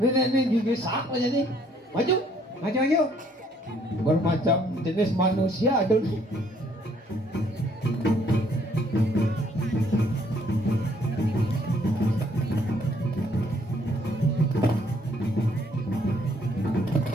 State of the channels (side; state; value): both; normal; correlation 0.65